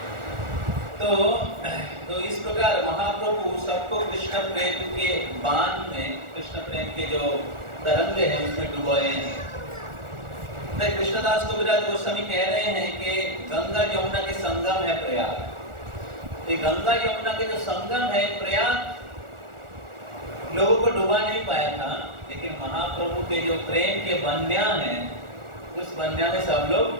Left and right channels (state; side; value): late; left; 1.4 ms